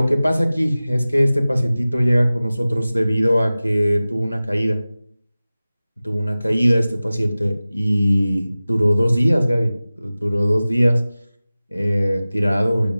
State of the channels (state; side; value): inverted; both; correlation -0.97